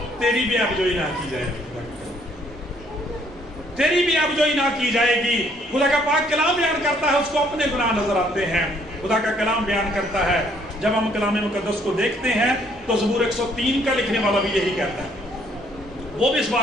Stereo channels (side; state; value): both; normal; correlation 0.65